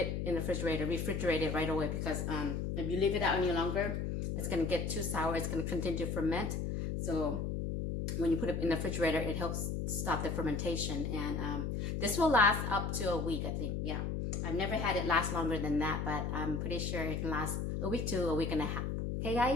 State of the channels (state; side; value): noise; left; hum, 2 dB below the sound